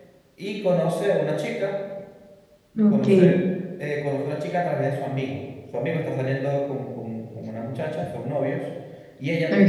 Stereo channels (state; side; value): identical; both; correlation 1.00